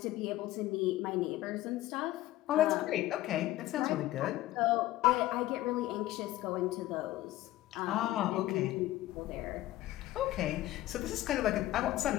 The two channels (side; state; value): right; quieter; 15.7 dB